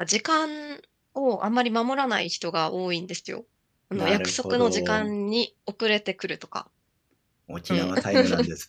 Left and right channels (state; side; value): identical; both; correlation 1.00